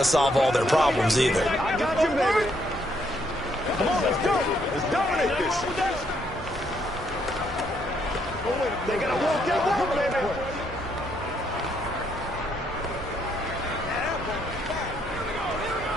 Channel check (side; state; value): both; normal; correlation 0.72